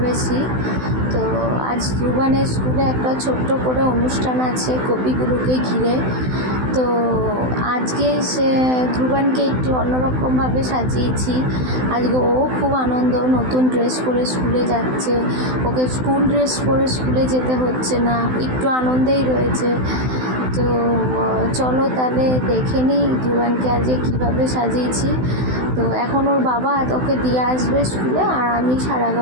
তো আজ ধ্রুবানের স্কুলে একটা ছোট্ট করে অনুষ্ঠান আছে কবিগুরুকে ঘিরে। তো আজকে ধ্রুবানকে একটু অন্যরকমভাবে সাজিয়েছি। আজকে ও খুব আনন্দ, নতুন ড্রেস পরে স্কুলে যাচ্ছে। ওকে স্কুল ড্রেস পরে স্কুলে যেতে হচ্ছে না, একটু আনন্দেই রয়েছে। তো চলো তাহলে দেখে নিই ধ্রুবানকে আজকে কীভাবে সাজিয়েছি। তো এখন ওর বাবা ওকে দিয়ে আসবে স্কুলে, আর আমি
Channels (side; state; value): left; late; 16 ms